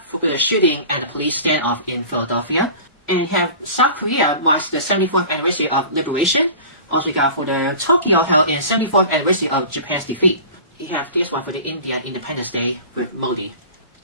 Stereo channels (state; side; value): inverted; both; correlation -0.39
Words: the shooting at the police standoff in Philadelphia. And have South Korea marks the 74th anniversary of liberation. Also we got for the Tokyo held in 74th anniversary of Japan's defeat. You have this one for the Indian Independence Day with Modi.